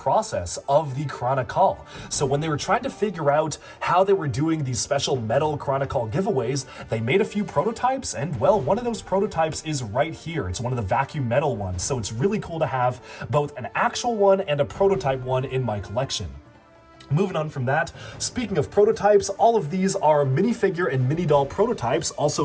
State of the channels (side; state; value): both; identical; correlation 1.00